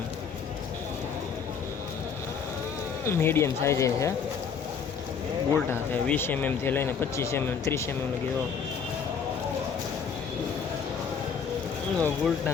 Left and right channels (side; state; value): right; quieter; 6.5 dB